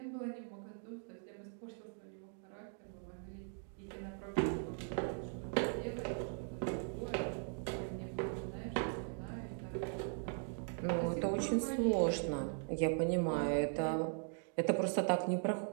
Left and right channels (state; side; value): silent; left; 51 dB below the other